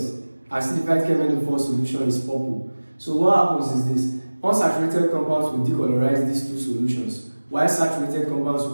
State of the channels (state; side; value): inverted; both; correlation -1.00